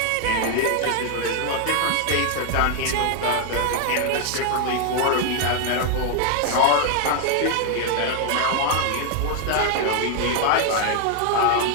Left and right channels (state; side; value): different; both; correlation 0.00